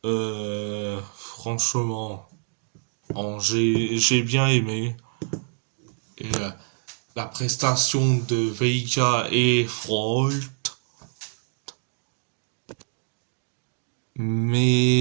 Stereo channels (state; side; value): silent; left; digital silence